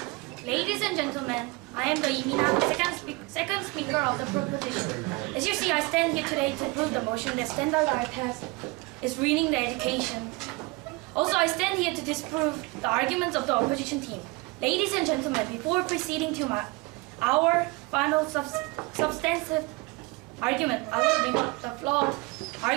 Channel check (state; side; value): quieter; left; 25.3 dB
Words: Ladies and gentlemen, I am the Imina, second speaker of the proposition. As you see, I stand here today to prove the motion that standardized test is ruining the education. Also, I stand here to disprove the arguments of the opposition team. Ladies and gentlemen, before proceeding to our final substantive argument, I will bring up the flawed